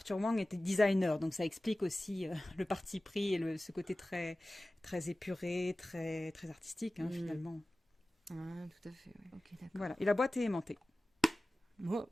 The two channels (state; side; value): normal; both; correlation 0.96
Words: Wang était designer, donc ça explique aussi le parti pris et ce côté très, très épuré, très, très artistique finalement. Ah, tout à fait, oui. Ok, d'accord. Voilà, et la boîte est aimantée. Oh,